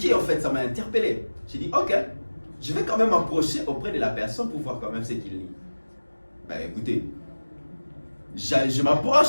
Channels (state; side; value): inverted; both; correlation -1.00